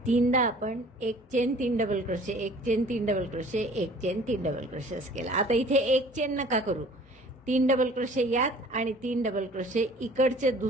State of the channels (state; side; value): normal; both; correlation 0.50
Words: 3दा आपण एक चेन, 3 डबल क्रोशे, एक चेन, 3 डबल क्रोशे, एक चेन, 3 डबल क्रोशे असं केलं. आता इथे एक चेन नका करू, 3 डबल क्रोशे यात आणि 3 डबल क्रोशे इकडच्या